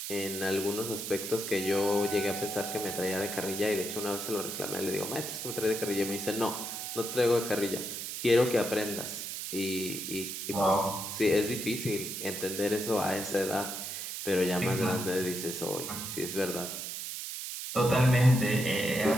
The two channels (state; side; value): noise; right; hiss, 6 dB below the sound